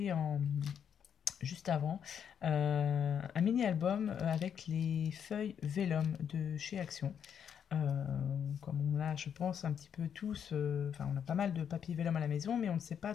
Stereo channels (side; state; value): right; quieter; 8.1 dB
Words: juste avant. Un mini-album avec les feuilles Vellum de chez Action. Comme on a, je pense, un petit peu tous, on a pas mal de papier Vellum à la maison, mais on ne sait pas